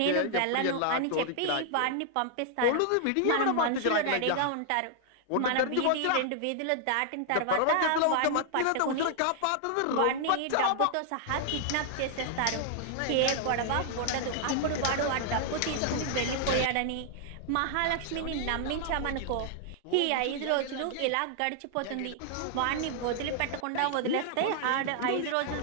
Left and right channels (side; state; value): both; different; correlation 0.00